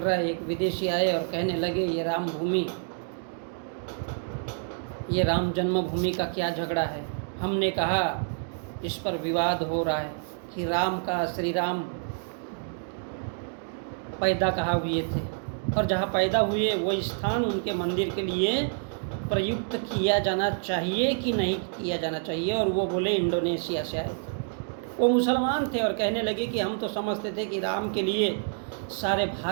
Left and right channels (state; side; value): silent; left; digital silence